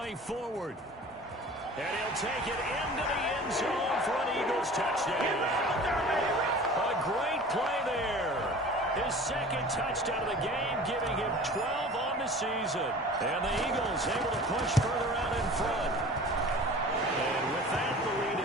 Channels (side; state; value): both; normal; correlation 0.42